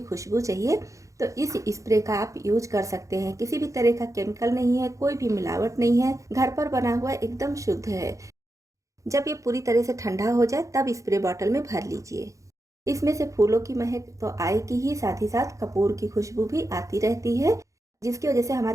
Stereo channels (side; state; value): left; late; 0.15 ms